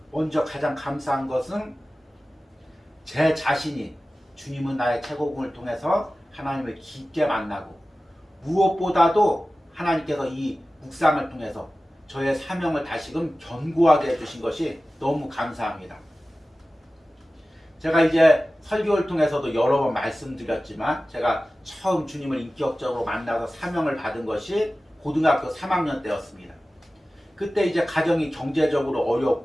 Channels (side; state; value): both; normal; correlation 0.96